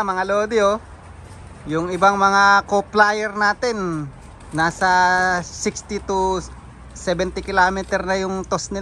lodi, yung ibang mga co-flyer natin nasa 60 to 70 kilometer na yung toss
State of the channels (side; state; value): both; identical; correlation 1.00